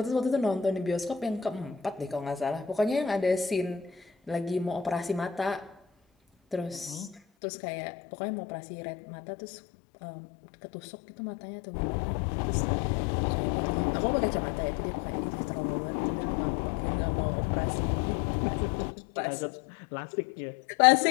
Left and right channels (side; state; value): right; drops out; at 7.2 s